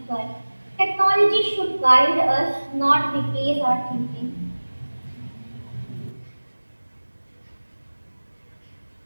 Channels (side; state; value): both; inverted; correlation -1.00